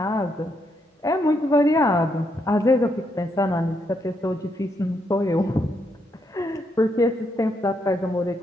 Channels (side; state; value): both; normal; correlation 0.78